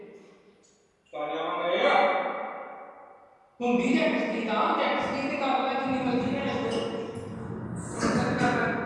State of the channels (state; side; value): identical; both; correlation 1.00